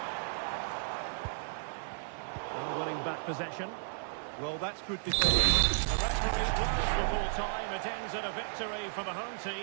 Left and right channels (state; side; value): silent; left; 55 dB below the other